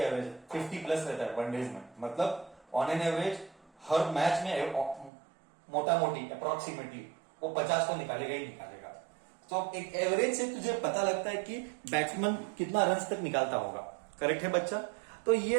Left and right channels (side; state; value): left; drops out; at 5.1 s